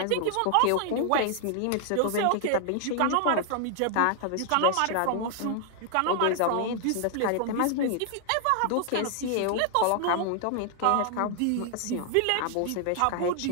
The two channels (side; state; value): both; different; correlation 0.00